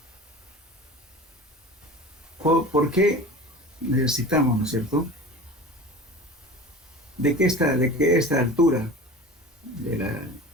por qué necesitamos, ¿no es cierto?, de que esta altura del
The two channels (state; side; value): normal; both; correlation 0.36